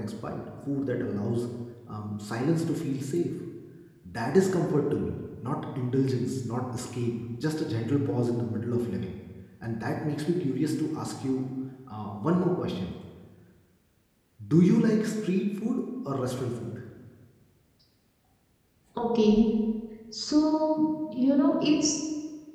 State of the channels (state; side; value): identical; both; correlation 1.00